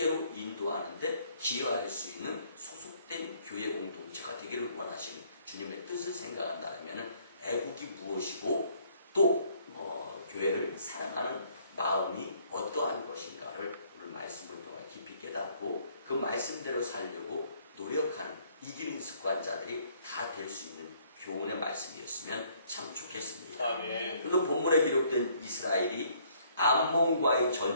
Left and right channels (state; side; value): inverted; both; correlation -0.63